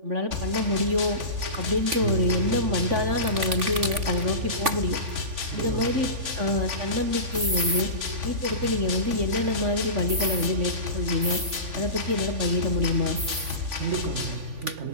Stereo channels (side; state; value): left; late; 3.5 ms